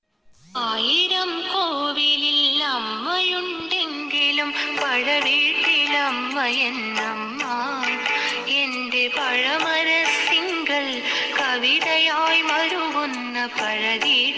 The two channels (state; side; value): identical; both; correlation 1.00